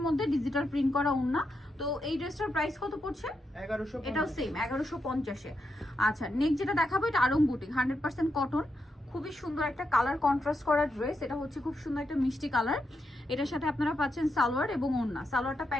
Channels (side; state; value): both; normal; correlation 0.84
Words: মধ্যে ডিজিটাল প্রিন্ট করা ওড়না। তো এই ড্রেসটার প্রাইস কত পড়ছে? 1150। এটাও সেম 1150-এ। আচ্ছা, নেক্সট যেটা দেখাবো, এটা আড়ং বুটিক, 100% কটন। খুবই সুন্দর একটা কালার কন্ট্রাস্ট করা ড্রেস। এটা হচ্ছে খুব সুন্দর একটা মিষ্টি কালার। এটার সাথে আপনারা পাচ্ছেন সালোয়ার এবং ওড়না। সালোয়ারটা